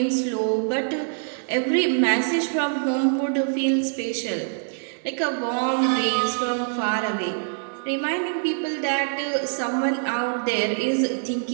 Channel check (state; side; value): silent; left; digital silence